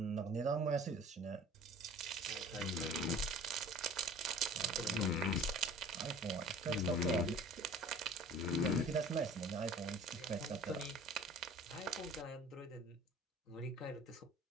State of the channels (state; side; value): normal; both; correlation 0.46